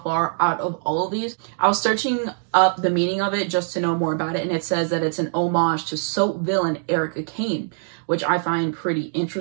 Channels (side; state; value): left; silent; digital silence